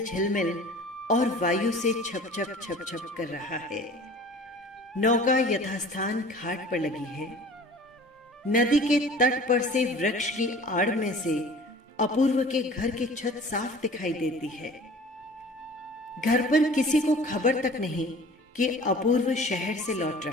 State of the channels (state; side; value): normal; both; correlation 0.45